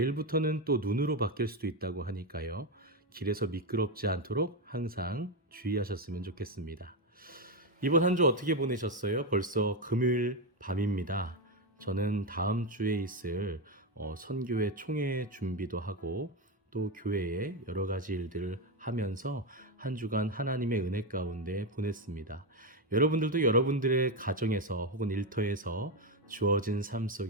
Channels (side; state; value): both; normal; correlation 0.09